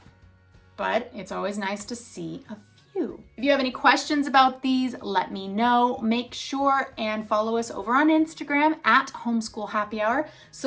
but it's always nice to see a few. If you have any questions about these, let me know. Make sure and follow us over on Instagram at Homeschool Happy Hour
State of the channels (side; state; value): both; identical; correlation 1.00